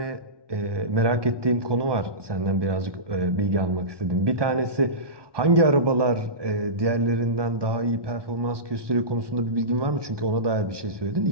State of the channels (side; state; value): left; late; 1.2 ms